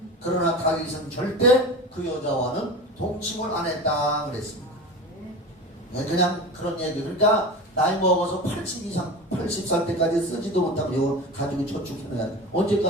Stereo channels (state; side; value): normal; both; correlation 0.30